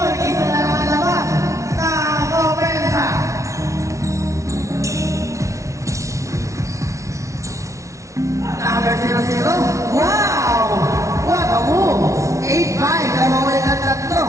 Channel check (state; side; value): late; left; 0.14 ms